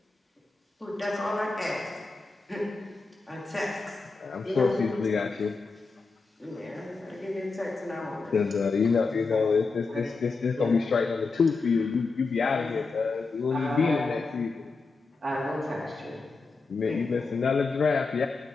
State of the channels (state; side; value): quieter; right; 4.1 dB